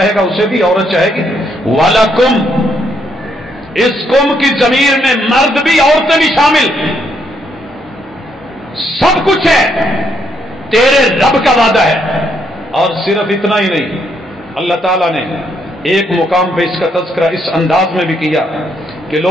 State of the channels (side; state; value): both; normal; correlation 0.74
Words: گا اسے بھی، عورت چاہے گی۔ وَلَكُمْ، اس قوم کی ضمیر میں مرد بھی عورتیں بھی شامل، سب کچھ ہے، تیرے رب کا وعدہ ہے۔ اور صرف اتنا ہی نہیں، اللہ تعالیٰ نے ایک مقام پہ اس کا تذکرہ اس انداز میں بھی کیا کہ